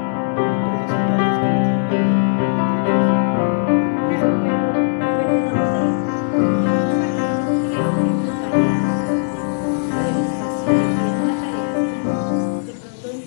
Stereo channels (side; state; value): right; silent; digital silence